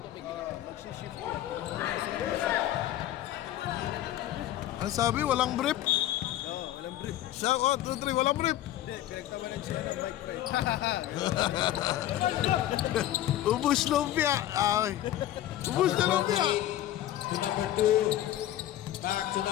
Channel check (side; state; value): right; quieter; 13.2 dB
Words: Ano sabi? Walang brief? Oo, walang brief. Siya, 1, 2, 3, walang brief. Hindi, pinagtawanan siya ng Mike Pay. Ubus lumpia. Ay. Ubus na lumpia. To number 2. Back to